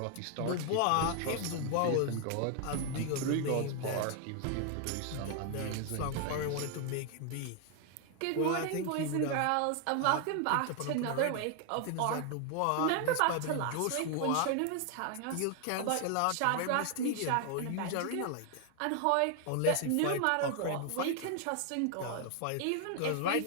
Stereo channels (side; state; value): both; different; correlation 0.00